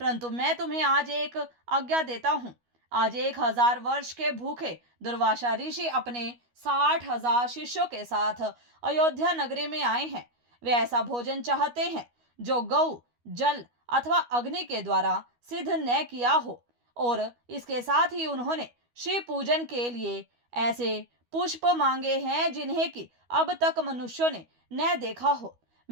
मैं तुम्हें आज एक आज्ञा देता हूँ। आज 1000 वर्ष के भूखे दुर्वासा ऋषि अपने 60,000 शिष्यों के साथ अयोध्या नगरी में आए हैं। वे ऐसा भोजन चाहते हैं जो गौ, जल अथवा अग्नि के द्वारा सिद्ध न किया हो, और इसके साथ ही उन्होंने शिव पूजन के लिए ऐसे पुष्प मांगे हैं जिन्हें कि अब तक मनुष्यों ने न देखा हो।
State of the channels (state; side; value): late; left; 12 ms